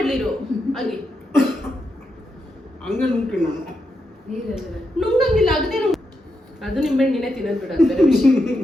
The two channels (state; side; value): normal; both; correlation 0.84